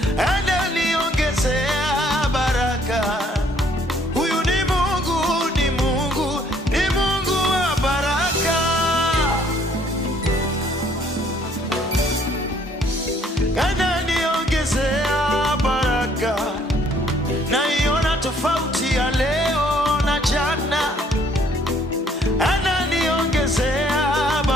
Ananiongezea baraka, huyu ni Mungu, ni Mungu, ni Mungu wa baraka. Ananiongezea baraka, naiona tofauti ya leo na jana. Ananiongezea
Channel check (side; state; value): both; normal; correlation 0.62